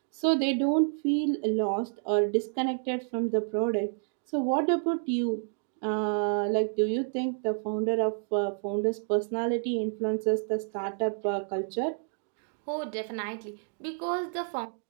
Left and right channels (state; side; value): silent; left; digital silence